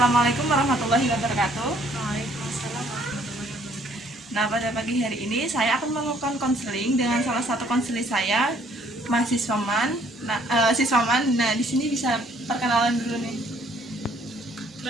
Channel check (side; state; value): both; normal; correlation 0.62